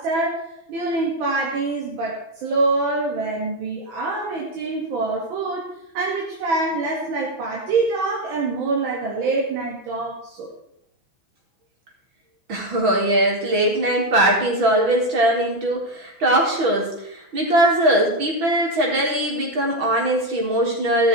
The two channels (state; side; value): late; left; 6.1 ms